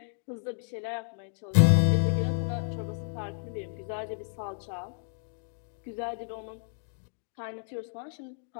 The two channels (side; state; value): right; silent; digital silence